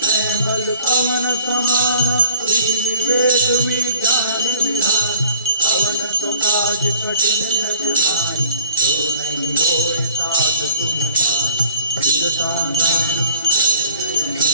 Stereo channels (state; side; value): inverted; both; correlation -0.54